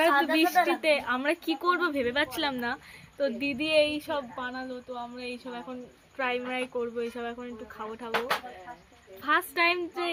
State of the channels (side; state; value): both; identical; correlation 1.00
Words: বৃষ্টিতে আমরা কি করব ভেবে পাচ্ছিলাম না, তো দিদি এই সব বানালো, তো আমরা এইসব এখন ফ্রাই ফ্রাই করবো, এইসব এখন একটু খাবো ঠাবো। ফার্স্ট টাইম যে